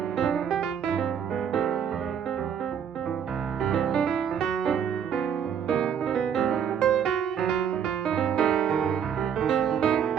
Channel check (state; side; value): quieter; left; 8.1 dB